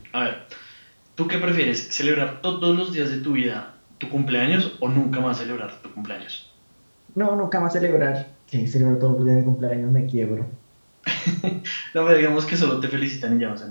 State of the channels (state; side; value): inverted; both; correlation -1.00